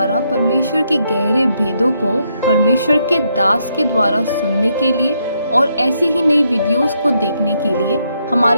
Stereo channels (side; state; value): both; inverted; correlation -0.76